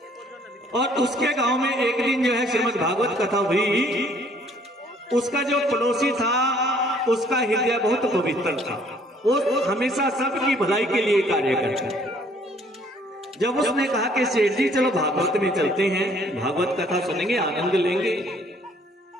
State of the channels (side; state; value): both; normal; correlation 0.61